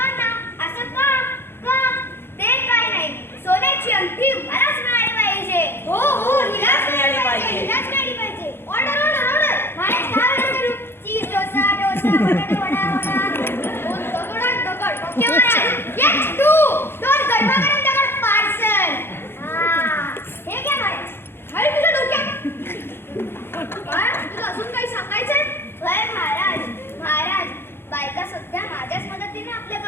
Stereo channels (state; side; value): late; right; 0.11 ms